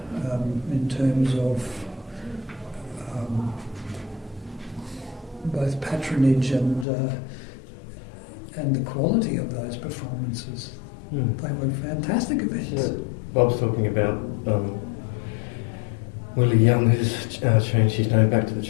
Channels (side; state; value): right; drops out; at 6.9 s